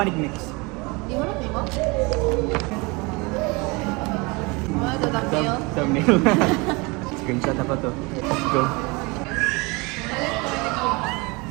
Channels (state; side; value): quieter; left; 26.8 dB